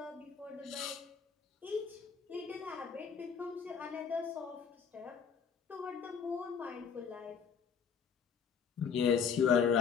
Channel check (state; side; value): quieter; right; 6.7 dB